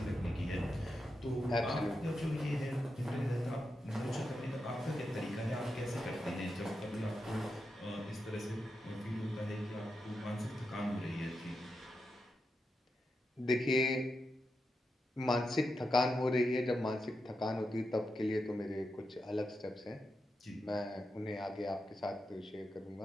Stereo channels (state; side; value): normal; both; correlation 0.87